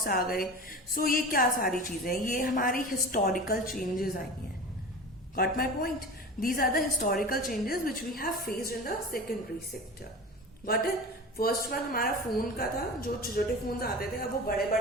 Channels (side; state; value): both; normal; correlation 0.33